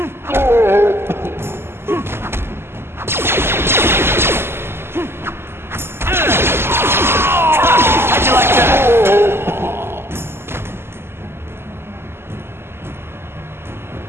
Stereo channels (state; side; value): late; left; 0.12 ms